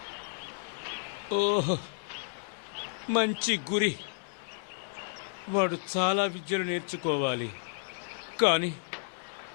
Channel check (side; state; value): right; silent; 56 dB below the other